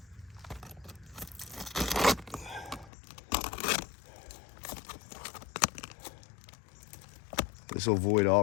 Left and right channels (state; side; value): drops out; right; at 2.9 s